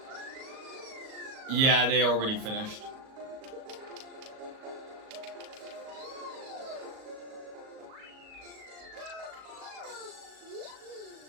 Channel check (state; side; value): late; left; 37 ms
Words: Yeah, they already finished.